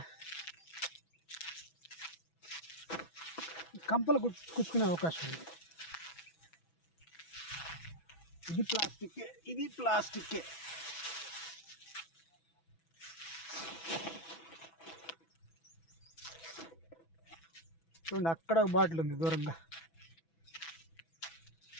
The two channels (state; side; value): late; right; 6.1 ms